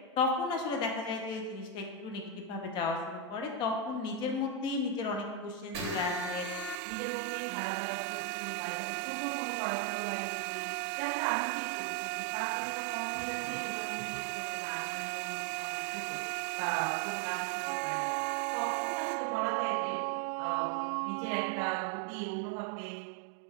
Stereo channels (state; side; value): drops out; left; at 6.8 s